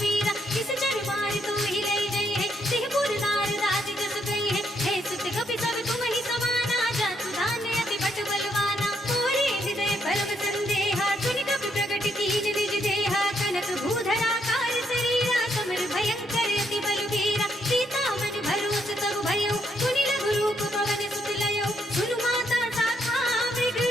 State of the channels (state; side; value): normal; both; correlation 0.75